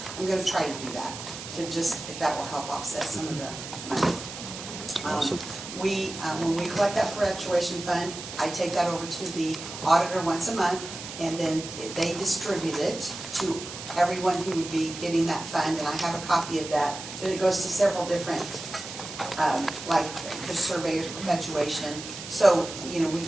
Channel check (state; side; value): noise; right; hiss, 10 dB below the sound